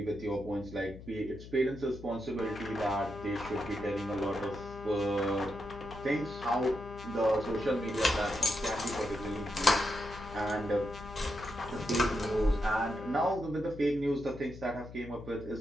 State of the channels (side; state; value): left; noise; hum, 14 dB below the sound